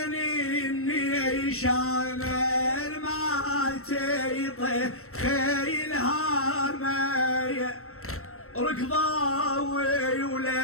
النيشان ما تيطي خيلها مايه ركضاوي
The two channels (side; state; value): right; late; 0.63 ms